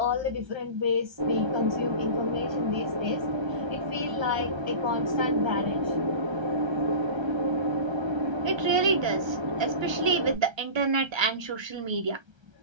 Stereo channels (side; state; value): left; late; 1.3 ms